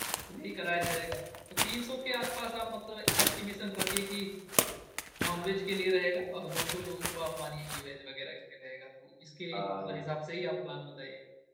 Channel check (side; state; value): both; identical; correlation 1.00